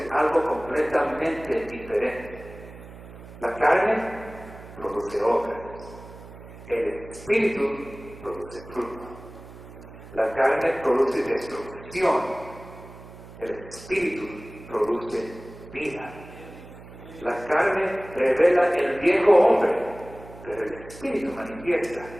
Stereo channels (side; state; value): right; noise; hum, 17 dB below the sound